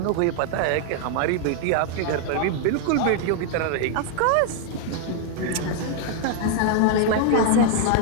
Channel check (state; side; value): different; both; correlation 0.00